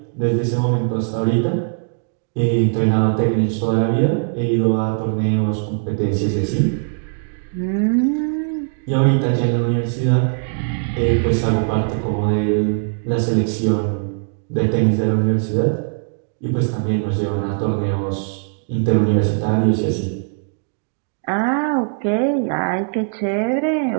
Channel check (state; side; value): silent; left; digital silence